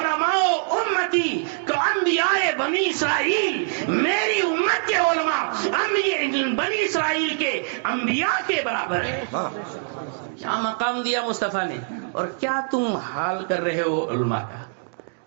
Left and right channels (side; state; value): left; silent; digital silence